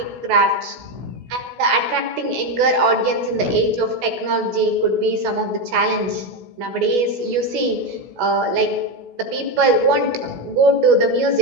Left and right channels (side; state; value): left; late; 16 ms